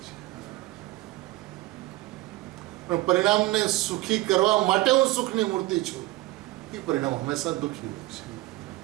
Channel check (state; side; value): quieter; left; 19.2 dB